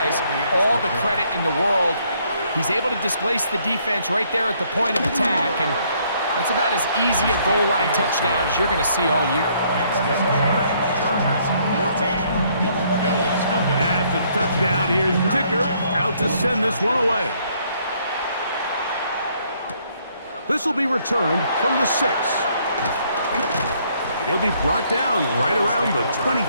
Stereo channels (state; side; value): inverted; both; correlation -0.67